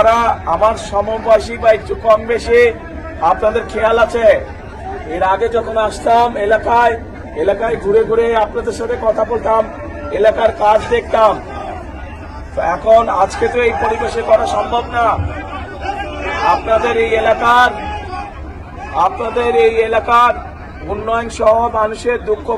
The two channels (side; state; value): both; identical; correlation 1.00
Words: আমার সমবয়সী বা একটু কম বেশি, আপনাদের খেয়াল আছে এর আগে যখন আসতাম এলাকায় ঘুরে ঘুরে আপনাদের সাথে কথা বলতাম, এলাকার কাজ দেখতাম। এখন আজকে তো এই পরিবেশে করা সম্ভব না। আপনাদের এই এলাকার উন্নয়ন সহ মানুষের দুঃখ